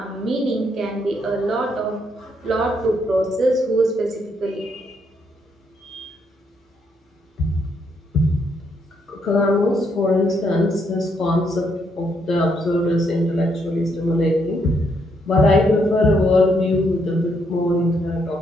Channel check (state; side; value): normal; both; correlation 0.74